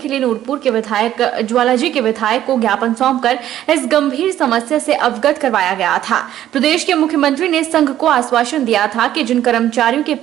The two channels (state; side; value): quieter; left; 12.1 dB